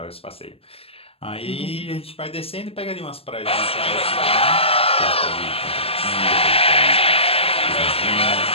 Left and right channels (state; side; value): late; right; 0.28 ms